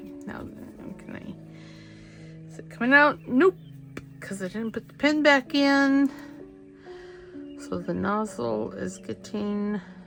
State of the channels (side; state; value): both; identical; correlation 1.00